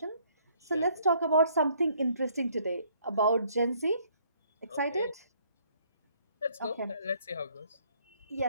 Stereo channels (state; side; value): inverted; both; correlation -0.64